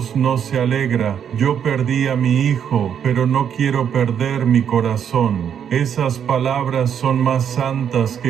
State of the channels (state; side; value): quieter; left; 8.4 dB